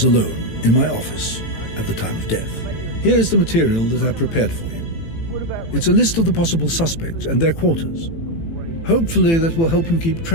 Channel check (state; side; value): late; right; 18 ms